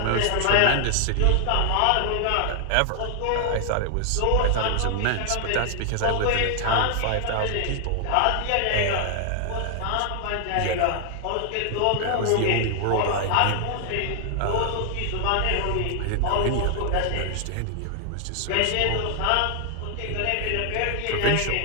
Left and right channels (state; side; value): different; both; correlation 0.00